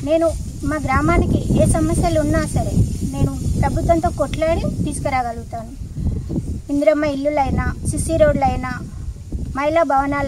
నేను మా గ్రామానికి ఏ సమస్యలు ఉన్నా సరే నేను ప్రభుత్వంతో కొట్లాడి తీసుకురాగలుగుతాను. ఇందిరమ్మ ఇల్లులైనా, సిసి రోడ్లైనా, మహిళా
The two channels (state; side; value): identical; both; correlation 1.00